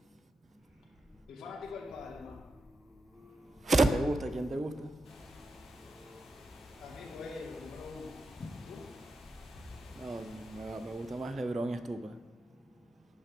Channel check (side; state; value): both; normal; correlation 0.88